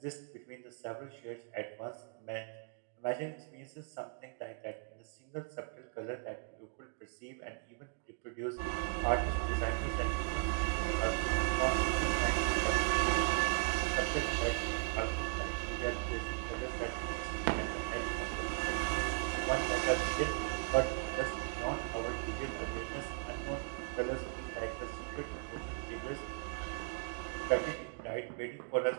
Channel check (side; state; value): left; quieter; 39.1 dB